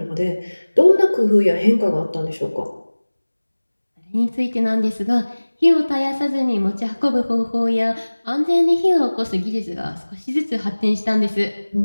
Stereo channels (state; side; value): inverted; both; correlation -1.00